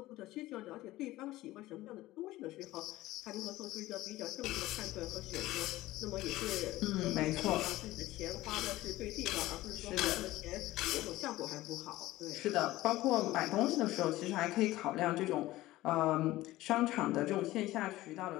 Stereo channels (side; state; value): right; quieter; 17.1 dB